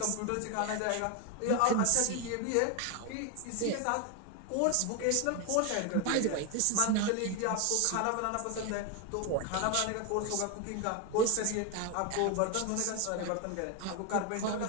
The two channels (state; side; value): different; both; correlation 0.01